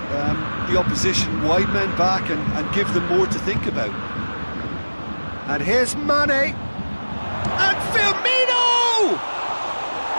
the opposition wide men back and give them more to think about. And here's Mane. And Firmino!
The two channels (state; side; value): inverted; both; correlation -1.00